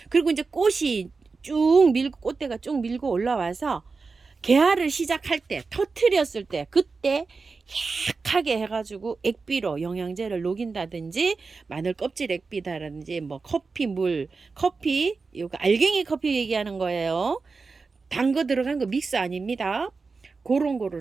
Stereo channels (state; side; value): quieter; left; 4.4 dB